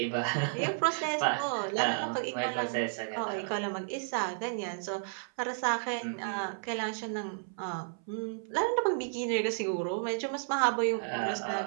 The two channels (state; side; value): silent; left; 56 dB below the other